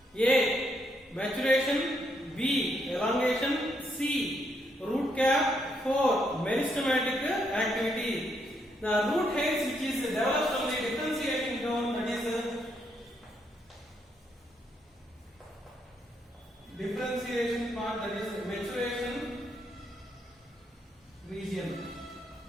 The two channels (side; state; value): both; normal; correlation 0.76